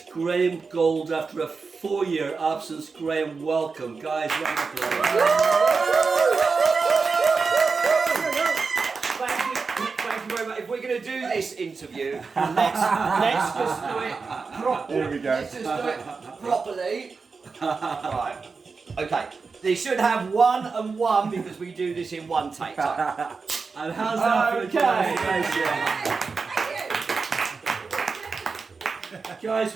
Graham Gold after a 4-year absence. Graham, welcome. Guys, round of applause. Thank you very much. If we're going to do this interview, let's just do it properly. There we go. Let's just do it properly. Right. Okay. They should have 1 and 1 because we do this in one take. So. And how's that for the guys? Guys,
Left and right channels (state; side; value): quieter; left; 4.7 dB